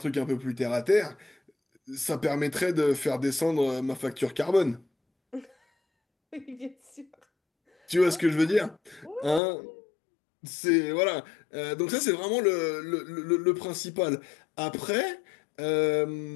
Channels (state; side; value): drops out; right; at 9.4 s